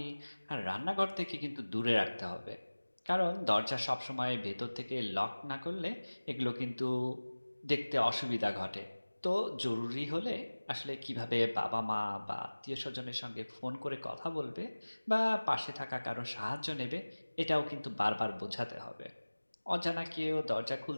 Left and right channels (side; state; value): both; inverted; correlation -1.00